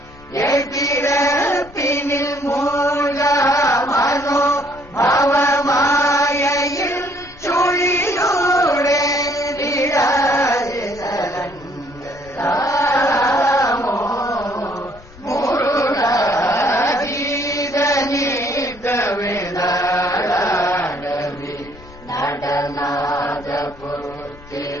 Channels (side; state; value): left; noise; rumble, 21 dB below the sound